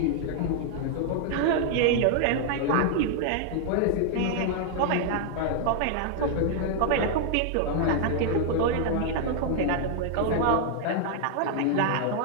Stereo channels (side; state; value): both; different; correlation 0.00